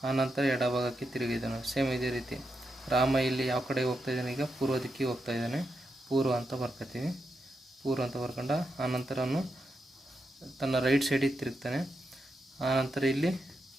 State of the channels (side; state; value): both; normal; correlation 0.85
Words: ಆನಂತರ ಎಡಭಾಗಕ್ಕೆ ತಿರುಗಿದನು. ಸೇಮ್ ಇದೇ ರೀತಿ ರಾಮ ಇಲ್ಲಿ ಯಾವ ಕಡೆ ಹೋಗ್ತಾ ಇದ್ದಾನೆ, ಈಗ ಪೂರ್ವ ದಿಕ್ಕಿಗೆ ಹೋಗ್ತಾ ಇದ್ದಾನೆ. ಪೂರ್ವ ಅಂತ ಬರ್ಕೊತೀವಿ, ಪೂರ್ವ ಅಂತ ಬರ್ಕೊಂಡ ಆನಂತರ ಅವನು ತನ್ನ ರೈಟ್ ಸೈಡಿಗೆ ತಿರುಗ್ತಾನೆ. ಆನಂತರ ಇಲ್ಲಿ